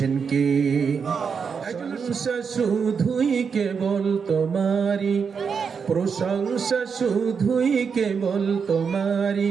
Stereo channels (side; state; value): left; quieter; 6.1 dB